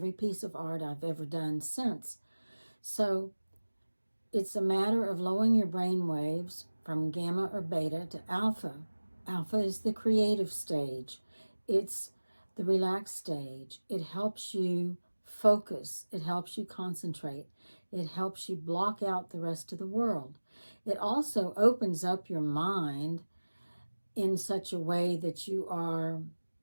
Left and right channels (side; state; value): both; inverted; correlation -1.00